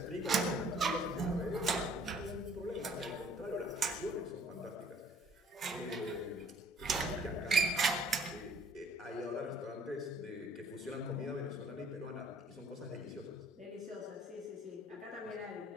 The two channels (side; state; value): both; normal; correlation 0.58